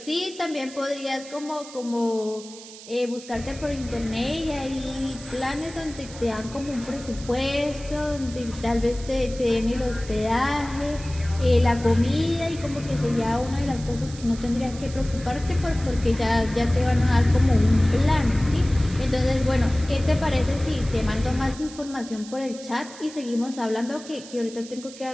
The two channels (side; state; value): right; noise; hiss, 16 dB below the sound